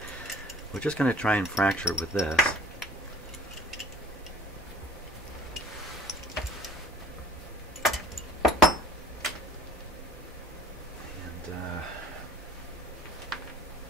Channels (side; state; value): both; normal; correlation 0.49